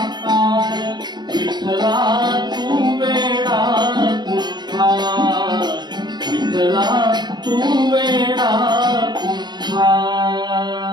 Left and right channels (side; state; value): left; late; 0.21 ms